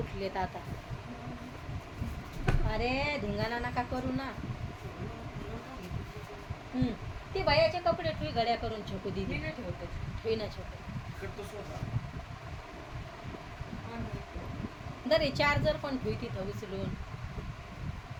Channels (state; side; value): identical; both; correlation 1.00